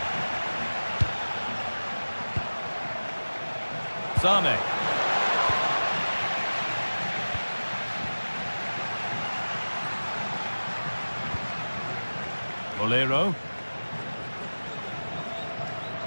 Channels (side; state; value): both; inverted; correlation -1.00